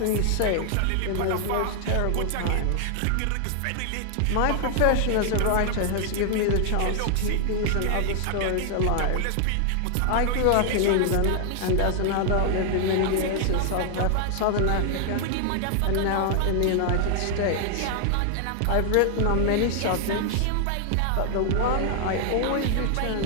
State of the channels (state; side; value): different; both; correlation 0.00